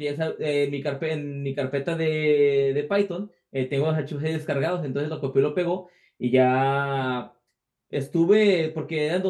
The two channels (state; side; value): identical; both; correlation 1.00